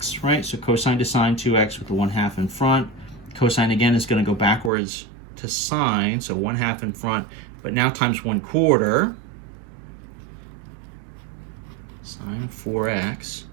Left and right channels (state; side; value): drops out; left; at 4.7 s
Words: right? So cosine to sine 2x with the 1/2 in front. Cosine again is going to go backwards to sine, so 1/2 in front, but now times 1/4 sine of 4x,